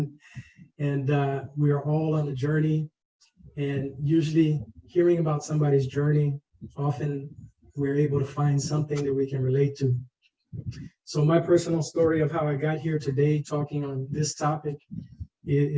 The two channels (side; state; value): both; identical; correlation 1.00